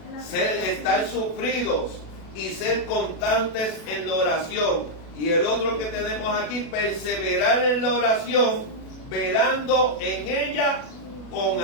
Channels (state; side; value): late; right; 37 ms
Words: estar sufridos y ser constantes en la oración. Y el otro que tenemos aquí, perseverar en la oración, velando en ella con